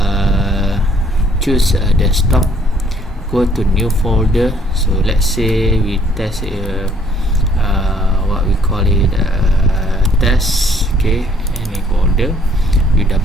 Choose desktop, go to new folder. So let's say we test what we call it test. Okay, any folder, you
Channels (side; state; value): both; normal; correlation 0.63